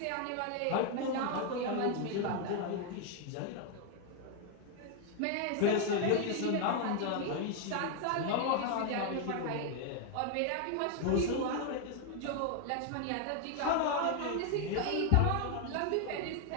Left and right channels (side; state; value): both; different; correlation 0.01